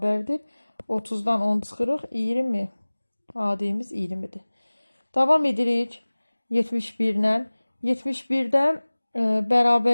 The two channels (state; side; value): inverted; both; correlation -1.00